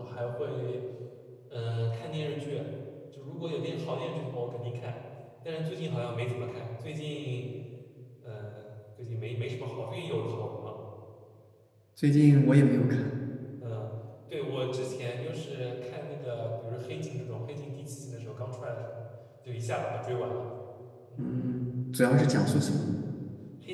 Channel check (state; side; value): identical; both; correlation 1.00